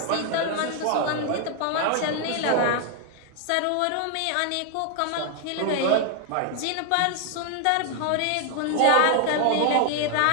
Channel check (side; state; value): both; different; correlation 0.00